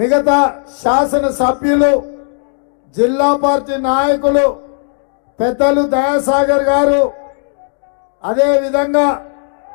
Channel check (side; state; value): right; silent; 64 dB below the other